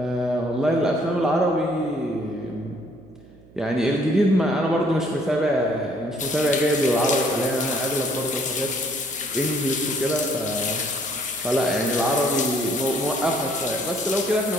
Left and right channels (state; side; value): noise; right; hum, 24 dB below the sound